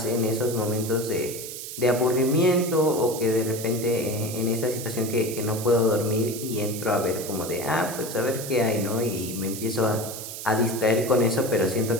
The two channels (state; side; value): noise; right; hiss, 9 dB below the sound